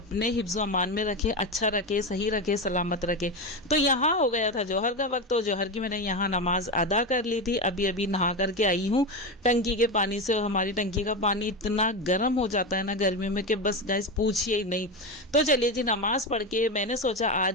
हिफ्ज़ अमान में रखे, अच्छा रखे, सही रखे, सलामत रखे। तो यहाँ हो गया था जोहर का वक्त, तो जोहर की मैंने यहाँ नमाज अदा कर ली थी। अभी अभी नहा करके आई हूँ टंकी के पानी से। और हमारी टंकी का पानी इतना गर्म हो जाता है ना गर्मी में कि बस गाइस पूछिए ही नहीं। तो चलिए जी, नमाज़ पढ़ के मैंने सोचा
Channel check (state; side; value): normal; both; correlation 0.17